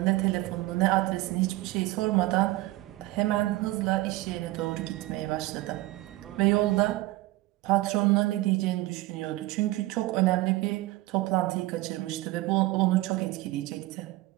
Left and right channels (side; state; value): left; quieter; 18.6 dB